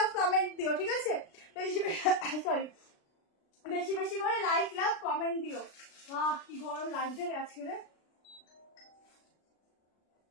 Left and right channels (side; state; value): right; late; 36 ms